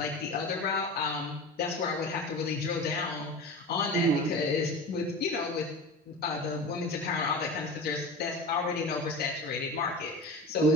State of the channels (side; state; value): both; normal; correlation 0.31